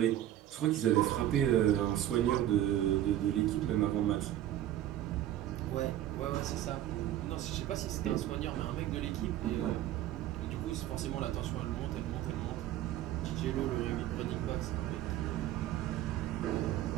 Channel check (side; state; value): left; quieter; 12.6 dB